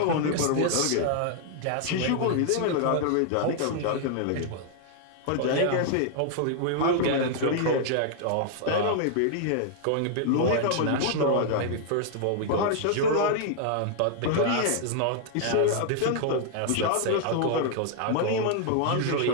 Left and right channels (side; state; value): both; different; correlation -0.01